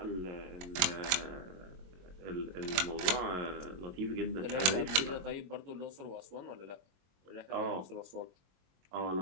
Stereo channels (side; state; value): left; late; 22 ms